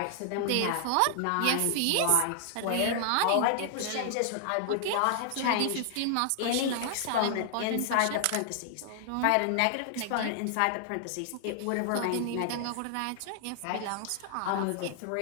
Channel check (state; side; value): different; both; correlation 0.00